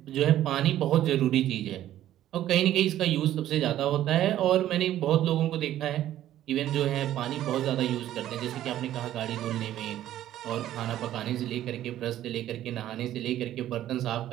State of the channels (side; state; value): left; quieter; 12.7 dB